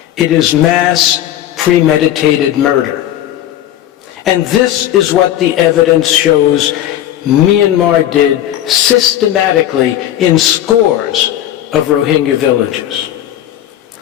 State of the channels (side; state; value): right; quieter; 12.1 dB